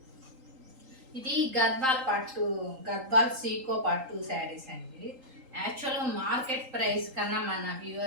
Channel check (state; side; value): late; left; 3.8 ms